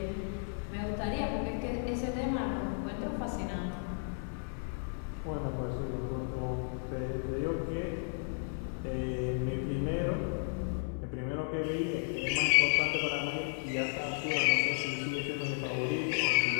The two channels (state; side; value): silent; right; 55 dB below the other